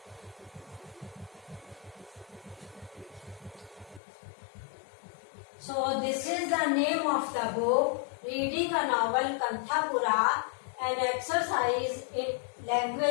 So this is the name of the book, Reading a Novel, Kanthapura, an exercise in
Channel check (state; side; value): drops out; right; at 4.0 s